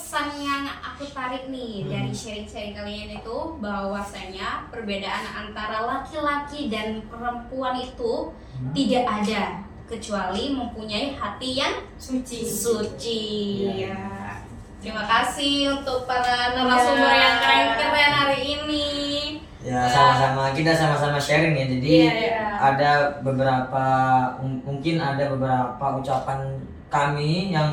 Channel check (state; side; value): identical; both; correlation 1.00